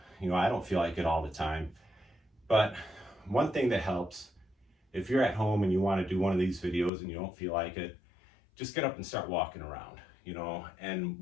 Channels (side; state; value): right; drops out; at 6.9 s